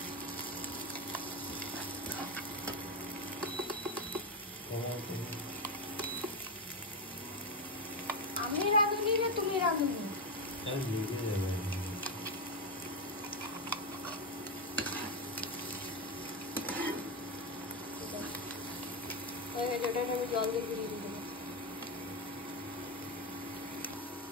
আমি রাঁধুনি না তুমি রাঁধুনি? জল দিয়ে ঘুরিয়ে দিতে হবে।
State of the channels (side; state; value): both; normal; correlation 0.09